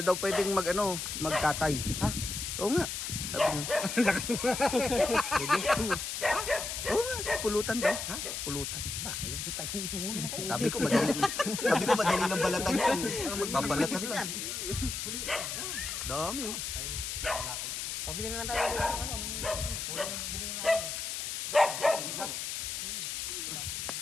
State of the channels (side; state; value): left; noise; hiss, 4 dB below the sound